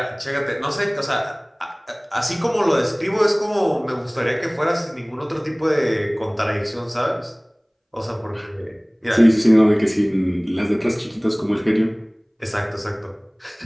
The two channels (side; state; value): both; identical; correlation 1.00